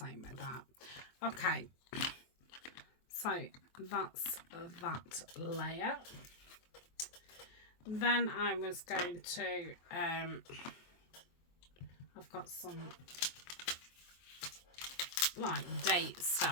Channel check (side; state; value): right; late; 23 ms